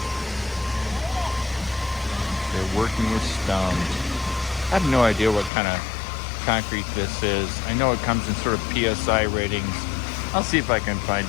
They're working with stone. I have no idea what kind of concrete this is. I know it comes in sort of PSI ratings. I'll see if I can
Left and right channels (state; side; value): drops out; right; at 5.5 s